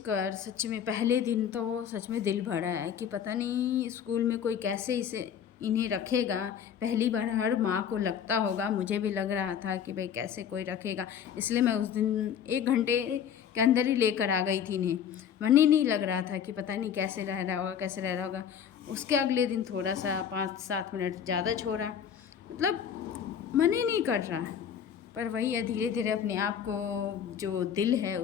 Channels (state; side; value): quieter; right; 8.3 dB